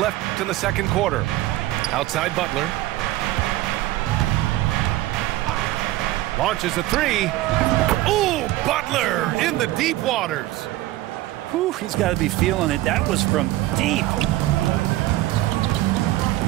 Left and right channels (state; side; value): quieter; left; 16.5 dB